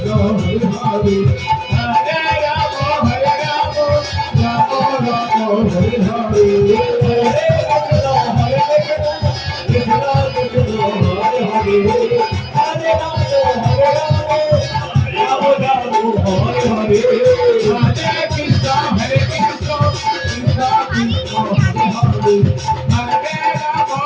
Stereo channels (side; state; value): both; identical; correlation 1.00